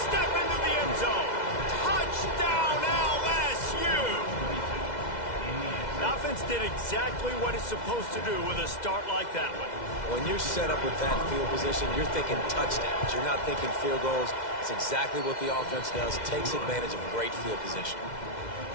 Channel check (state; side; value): late; right; 2.0 ms